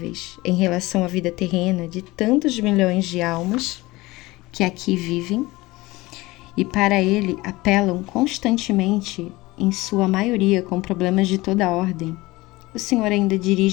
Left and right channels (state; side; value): quieter; right; 20.4 dB